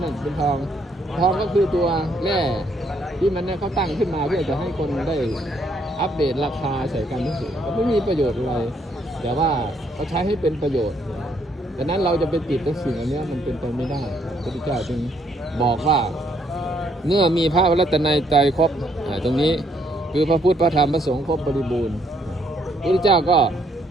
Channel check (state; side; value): normal; both; correlation 0.70